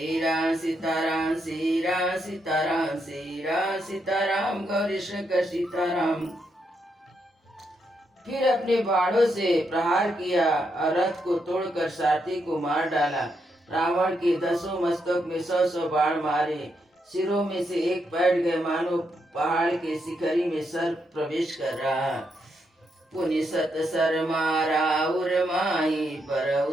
राम सीताराम श्री राम सीताराम श्री राम सीताराम गौरी शंकर सीताराम। फिर अपने बाणों से प्रहार किया और रथ को तोड़कर सारथी को मार डाला। रावण के 10 मस्तक में 100 बाण मारे। सिरों में से एक बैठ गए, मानो पहाड़ के शिखरी में सर्प प्रवेश कर रहा। पुनि सत सर मारा उर माही पर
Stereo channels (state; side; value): normal; both; correlation 0.80